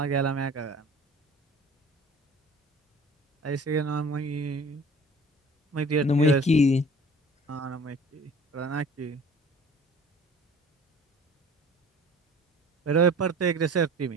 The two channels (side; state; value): both; normal; correlation 0.46